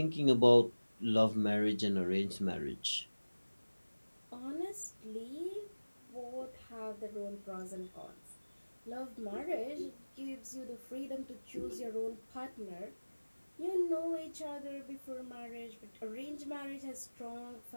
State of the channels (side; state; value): both; inverted; correlation -1.00